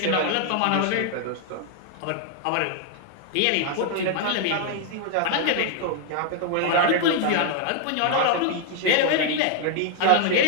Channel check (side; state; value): both; different; correlation 0.00